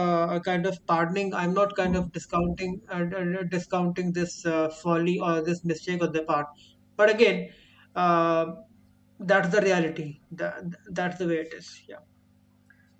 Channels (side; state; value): both; identical; correlation 1.00